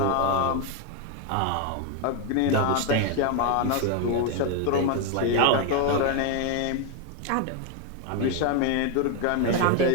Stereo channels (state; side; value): different; both; correlation 0.01